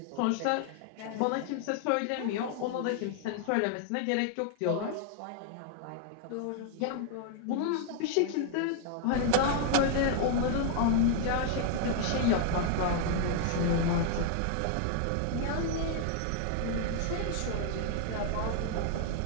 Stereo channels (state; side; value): different; both; correlation 0.00